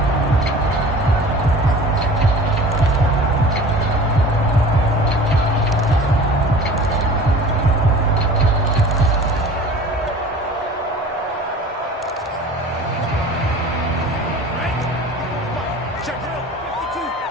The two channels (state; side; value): normal; both; correlation 0.42